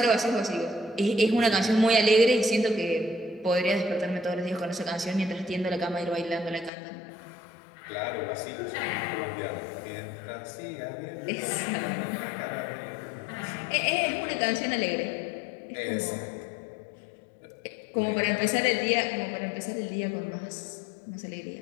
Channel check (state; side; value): drops out; right; at 6.7 s